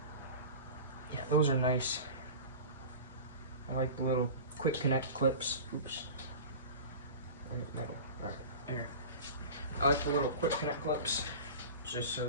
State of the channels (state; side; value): inverted; both; correlation -0.34